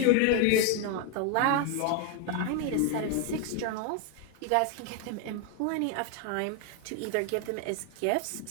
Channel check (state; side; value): different; both; correlation 0.01